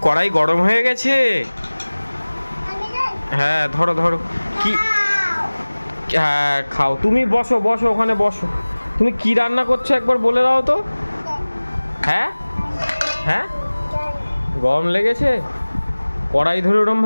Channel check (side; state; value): both; inverted; correlation -1.00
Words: কড়াই গরম হয়ে গেছে? হ্যাঁ ধরো ধরো। কি? হ্যাঁ খাও, তুমি বসো বসো, ওখানে বসো। তুমি কি রান্না করছো একবার বলে দাও তো। হ্যাঁ হ্যাঁ, গরম লেগেছে? কড়াই ধরে